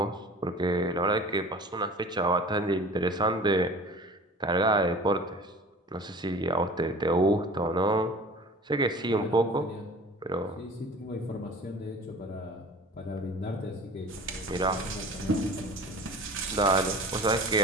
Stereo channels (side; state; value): both; normal; correlation 0.42